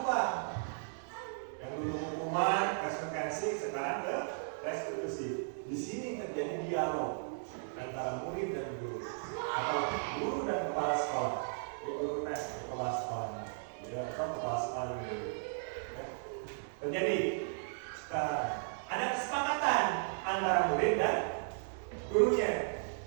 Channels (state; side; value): silent; left; 54 dB below the other